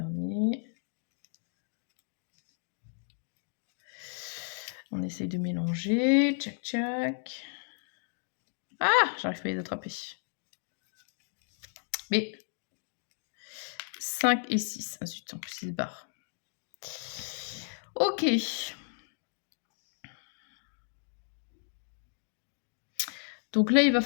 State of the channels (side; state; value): right; silent; 55 dB below the other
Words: On essaye de mélanger. Tchac, tchac. Ah, j'arrive pas à les attraper. Mais 5 et 6. Ah zut, en plus il se barre. Ok. Donc là, il va